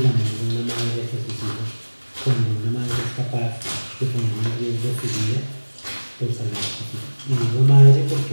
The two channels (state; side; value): inverted; both; correlation -1.00